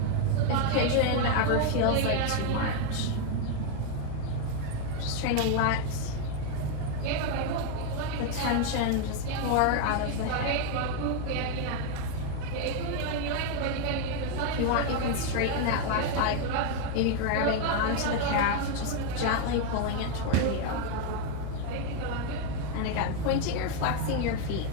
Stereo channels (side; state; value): both; different; correlation 0.01